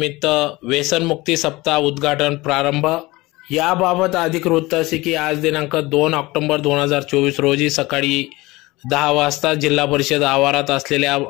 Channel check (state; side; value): quieter; right; 21.0 dB